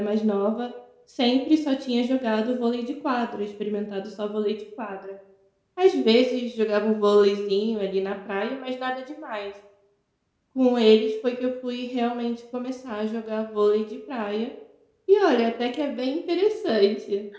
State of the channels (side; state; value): both; identical; correlation 1.00